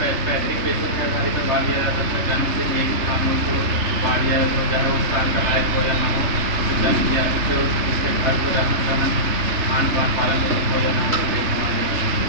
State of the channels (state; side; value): late; left; 3.3 ms